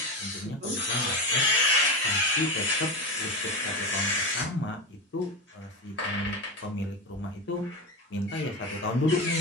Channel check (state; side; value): normal; both; correlation 0.19